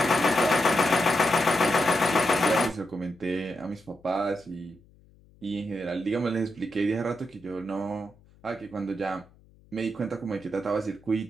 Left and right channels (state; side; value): noise; left; hum, 28 dB below the sound